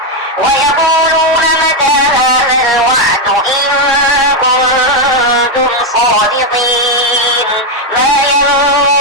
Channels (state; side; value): normal; both; correlation 0.04